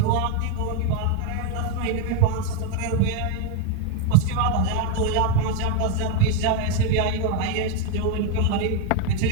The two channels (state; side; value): different; both; correlation 0.01